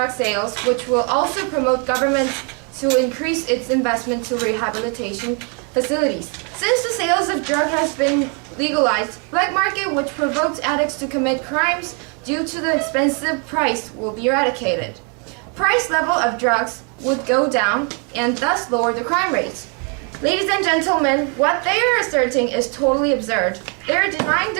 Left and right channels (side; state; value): left; quieter; 37.3 dB